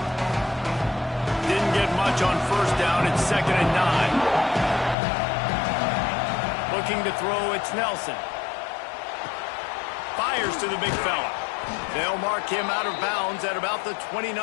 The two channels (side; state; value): right; drops out; at 5.0 s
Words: On 1st down, it's 2nd and 9. Looking to throw, it's Nelson. Fires to the big fella. They'll mark him out of bounds at about the